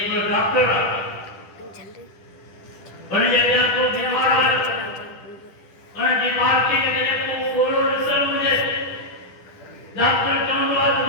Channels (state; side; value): late; right; 10 ms